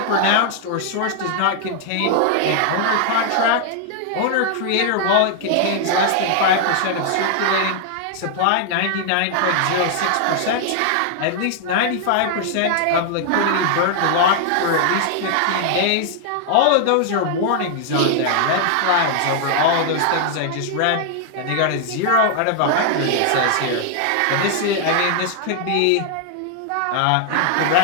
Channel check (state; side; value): different; both; correlation 0.00